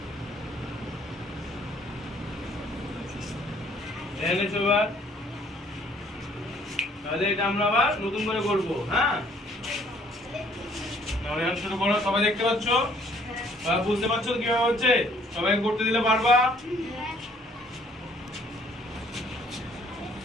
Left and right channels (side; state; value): both; normal; correlation 0.61